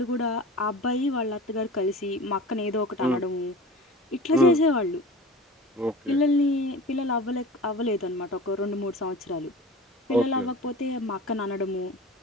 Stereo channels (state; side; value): normal; both; correlation 0.36